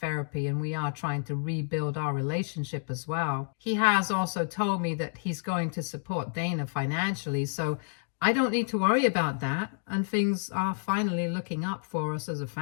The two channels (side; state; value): right; silent; digital silence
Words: and we are trying to rebuild our relationship as well. He has also told me that he's going to support Dana financially, so I don't need to worry about that, and things are finally looking up for us as a